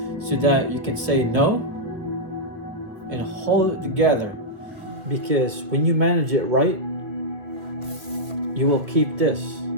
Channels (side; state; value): left; late; 2.2 ms